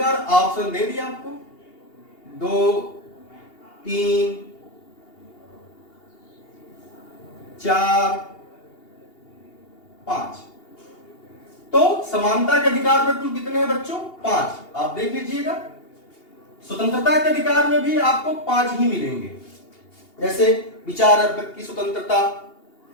ऑप्शन दे दिया आपको, 2, 3, 4, 5। तो समानता के अधिकार में कुल कितने हैं बच्चों, 5। आप देख लीजिएगा, स्वतंत्रता के अधिकार में भी आपको 5 ही मिलेंगे। जैसे विचार व्यक्त की स्वतंत्रता,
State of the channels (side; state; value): right; late; 2.8 ms